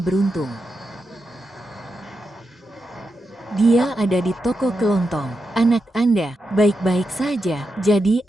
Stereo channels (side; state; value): both; normal; correlation 0.87